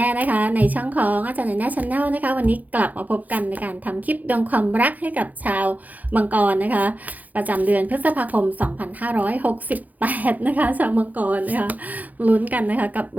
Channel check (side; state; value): left; late; 0.080 ms